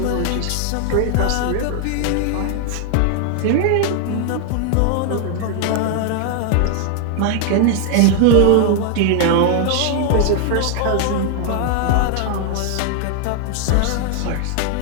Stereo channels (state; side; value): different; both; correlation 0.00